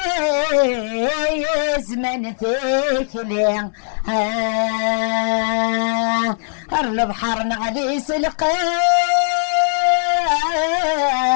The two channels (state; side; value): silent; right; digital silence